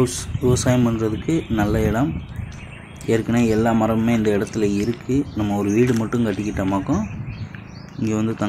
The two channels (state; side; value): identical; both; correlation 1.00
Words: விவசாயம் பண்ணுறதுக்கு நல்ல இடம். ஏற்கனவே எல்லா மரமுமே இந்த இடத்துல இருக்குது. நம்ம ஒரு வீடு மட்டும் கட்டிக்கிட்டோமாக்கும் இங்கே வந்து